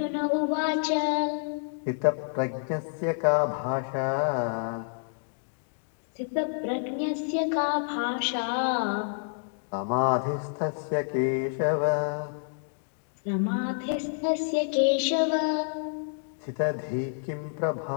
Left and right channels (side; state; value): right; silent; digital silence